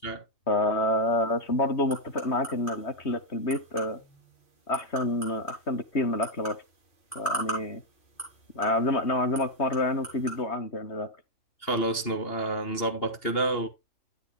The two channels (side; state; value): right; late; 2.8 ms